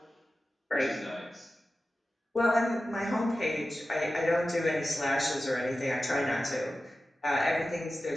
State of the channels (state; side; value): normal; both; correlation 0.94